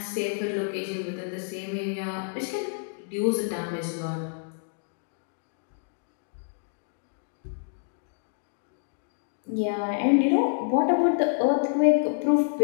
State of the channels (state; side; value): silent; right; digital silence